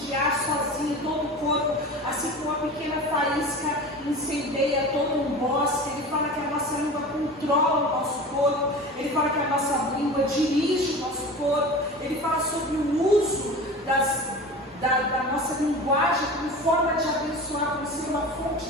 sozinha todo o corpo, assim como uma pequena faísca incendeia todo um bosque. Ele fala que a nossa língua controla o nosso corpo. Ele fala que a nossa língua dirige o nosso corpo. Ele fala sobre o uso da nossa linguagem como forma de abençoar, como ser uma fonte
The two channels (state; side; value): normal; both; correlation 0.34